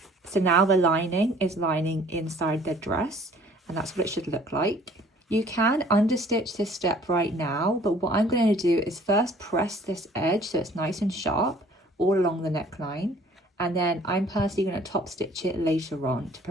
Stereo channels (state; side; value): normal; both; correlation 0.54